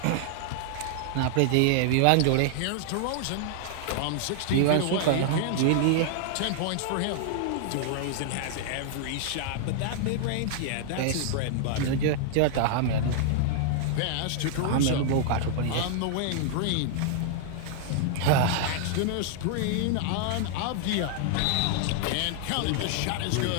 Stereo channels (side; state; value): both; different; correlation -0.01